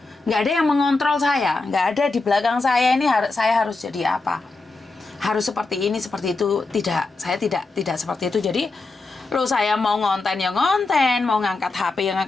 ada yang mengontrol saya, enggak ada di belakang saya ini saya harus jadi apa, harus seperti ini, seperti itu, tidak, saya tidak seperti itu. Jadi saya mau ngonten ya ngonten, mau ngangkat HP ya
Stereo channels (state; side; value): quieter; right; 3.5 dB